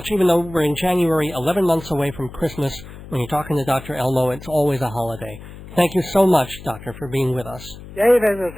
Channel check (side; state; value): left; noise; hum, 16 dB below the sound